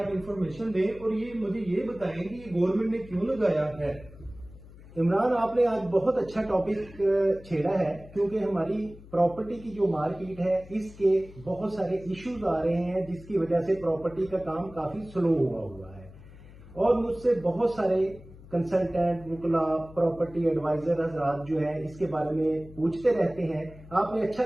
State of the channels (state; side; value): noise; left; hum, 19 dB below the sound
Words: इंफॉर्मेशन दें और ये मुझे ये बताएं कि ये गवर्नमेंट ने क्यों लगाया है। इमरान, आपने आज बहुत अच्छा टॉपिक छेड़ा है, क्योंकि हमारी प्रॉपर्टी की जो मार्केट है इसके बहुत सारे इश्यूज आ रहे हैं, जिसकी वजह से प्रॉपर्टी का काम काफी स्लो हुआ है। और मुझसे बहुत सारे कंसल्टेंट, वुकला, प्रॉपर्टी एडवाइजर हजरात जो है इसके बारे में पूछते रहते हैं। आपने अच्छा